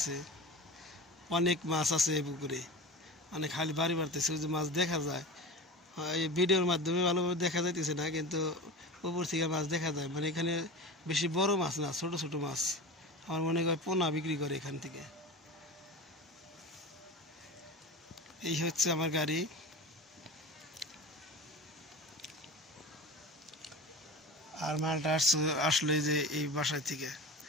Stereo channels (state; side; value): normal; both; correlation 0.30